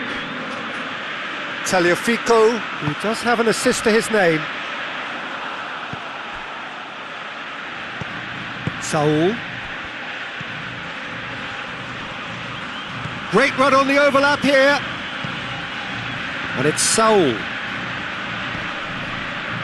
Tagliafico, who does have an assist to his name. Saul. Great run on the overlap here. And it's Saul.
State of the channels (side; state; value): both; identical; correlation 1.00